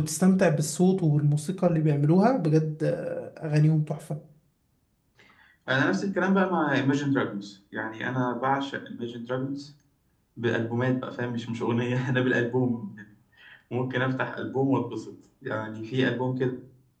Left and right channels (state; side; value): identical; both; correlation 1.00